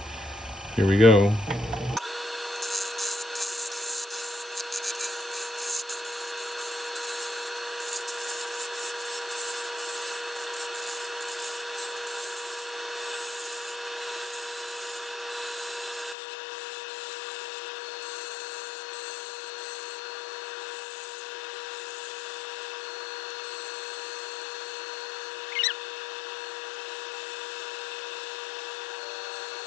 here we go.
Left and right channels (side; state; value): right; drops out; at 16.2 s